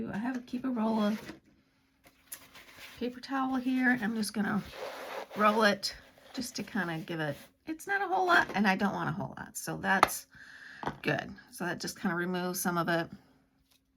keep a roll of paper towel here. I'm just going to roll it just to kind of give it, it's not a whole lot, and I don't want a whole lot, so that's good. So that just kind of removes some of it.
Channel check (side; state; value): both; identical; correlation 1.00